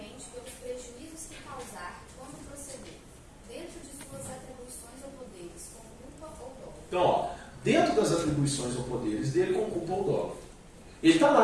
pelos prejuízos que causar quando proceder, dentro de suas atribuições ou poderes, com culpa ou dolo. Então, ó, dentro das atribuições ou poderes dele, com culpa ou dolo. Ele está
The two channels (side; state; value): both; identical; correlation 1.00